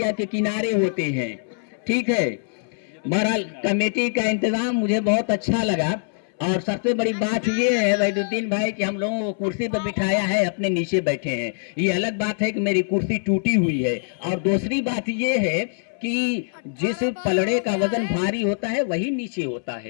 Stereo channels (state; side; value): silent; right; 63 dB below the other